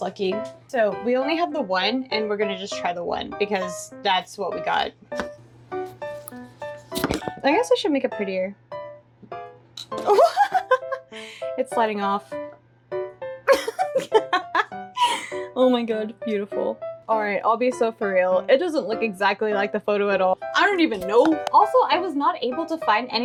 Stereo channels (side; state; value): both; identical; correlation 1.00